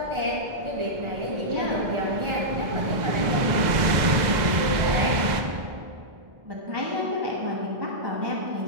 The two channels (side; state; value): left; late; 2.0 ms